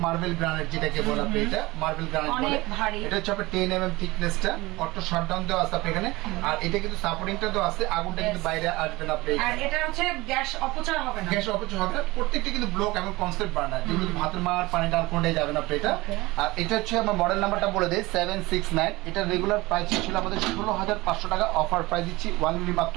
মার্বেল গ্রানাইট, যেটাকে বলা হয় এটা মার্বেল গ্রানাইট বলে। এটা হচ্ছে আপনার 10 mm থিকনেসটা, অটো শাটডাউন দেওয়া আছে আপনি এখানে। আর এটা কিন্তু সাপোর্টিংটা দেওয়া আছে, আগুনটা কিন্তু বাইরে আসবে না আপনি। আর এটা হচ্ছে গ্যাস অপচয় হবে না, গ্যাস অপচয় হবে না। প্রত্যেকটা কিন্তু ব্লক এবং কনসেপ্ট বার্নার, যেগুলো ভাতের মার পানি ডাল কোনটাই যাবে না আপনি এটা। আর এটা হচ্ছে আমার মডেল নাম্বারটা বলে দেই 769। এটা রেগুলার প্রাইস ছিল আমাদের 16,500 টাকা, অফার প্রাইস দিচ্ছি ওয়ানলি মাত্র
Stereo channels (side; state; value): left; quieter; 21.0 dB